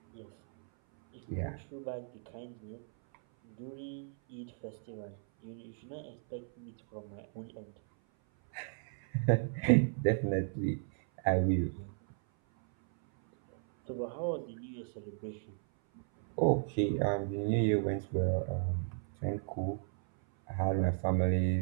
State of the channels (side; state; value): left; silent; 55 dB below the other